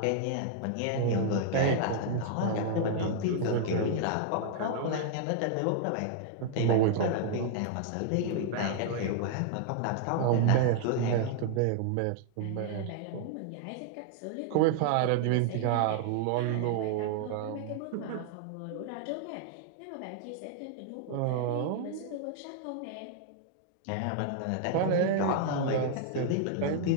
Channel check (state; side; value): different; both; correlation 0.00